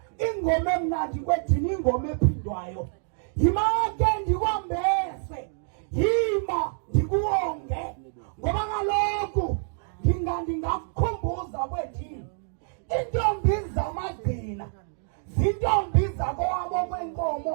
ingoma emnandi kwethini ingoma ephindwayo. Yima ke ndikwambese, yima ndikuwonge. Ngoba kaloku ndingakukhumbuza kwethini intombi zamagqina zintombi zakowabo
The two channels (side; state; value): left; silent; digital silence